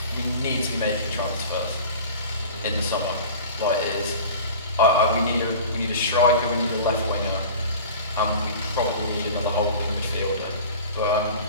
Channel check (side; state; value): both; inverted; correlation -0.38